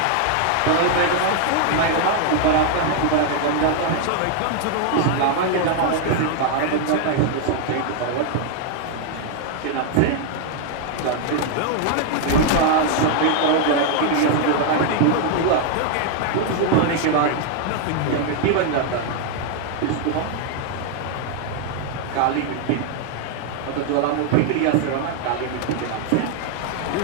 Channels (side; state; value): both; different; correlation 0.00